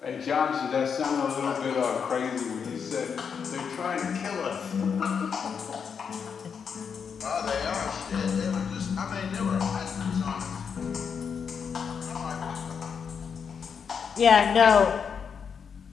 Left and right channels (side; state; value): right; quieter; 6.6 dB